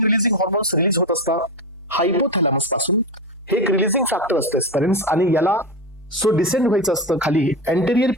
रिलीजिंग हॉर्मोन्स रिलीज होत असतात हायपोथॅलॅमस पासून. हे एक रिलीजिंग फॅक्टर असतं स्पेरेंट्स, आणि याला सो डिसेंड व्हायचं असतं खाली अँटेरियर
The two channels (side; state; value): both; normal; correlation 0.17